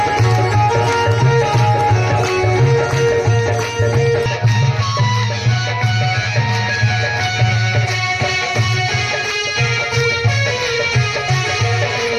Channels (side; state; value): both; identical; correlation 1.00